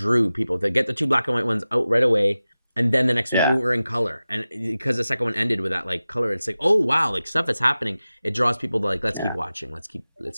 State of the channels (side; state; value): both; inverted; correlation -0.95